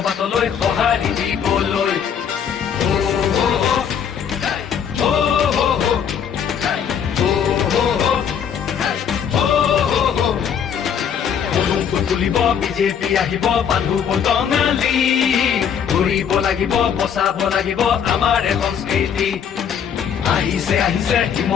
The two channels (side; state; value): right; quieter; 7.9 dB